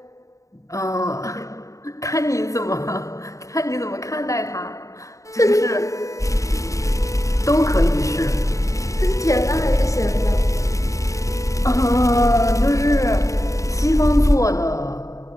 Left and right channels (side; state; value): right; late; 0.16 ms